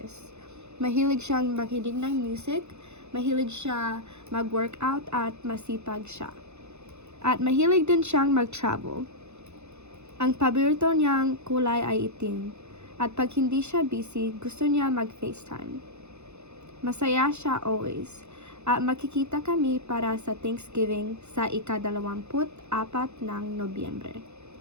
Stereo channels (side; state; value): left; late; 0.81 ms